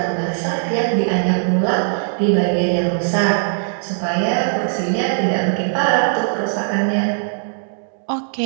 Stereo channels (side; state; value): left; silent; digital silence